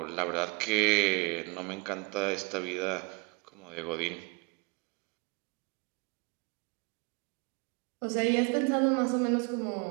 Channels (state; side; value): quieter; left; 29.6 dB